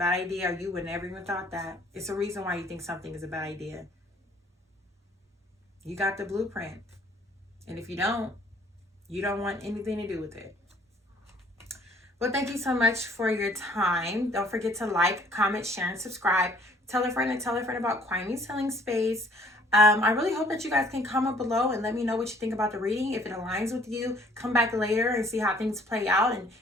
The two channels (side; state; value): both; normal; correlation 0.58